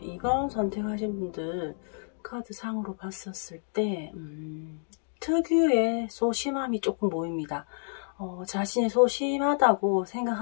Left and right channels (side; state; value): right; silent; digital silence